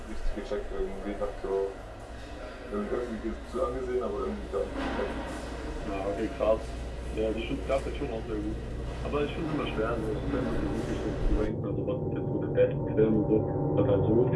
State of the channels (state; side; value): identical; both; correlation 1.00